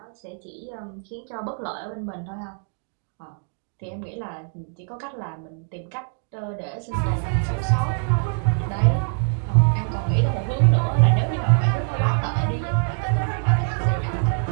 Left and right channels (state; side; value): silent; left; 55 dB below the other